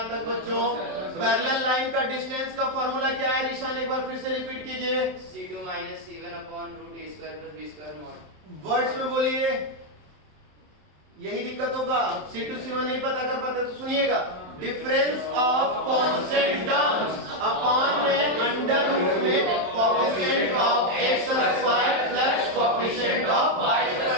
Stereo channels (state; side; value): late; left; 27 ms